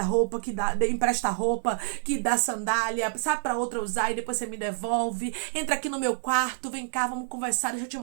que empresta roupa, que dá sandália, sabe, pra outra usar e depois você me devolve. Entra aqui no meu quarto, vem cá, vamos conversar, deixa eu te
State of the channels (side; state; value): left; silent; digital silence